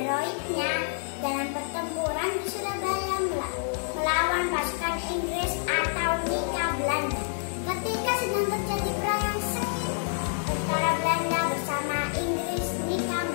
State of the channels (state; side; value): silent; right; 59 dB below the other